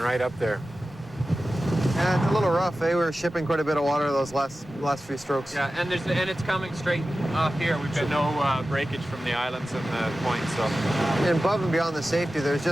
up there. Yeah, it's a little rough, eh? We were shipping quite a bit of water those last few strokes. Yeah, and it's coming straight off here. We've got no breakage from the islands and the points, so. And above and beyond the safety,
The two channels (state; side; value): normal; both; correlation 0.94